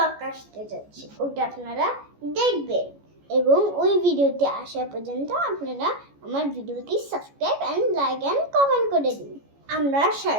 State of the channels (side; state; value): left; late; 14 ms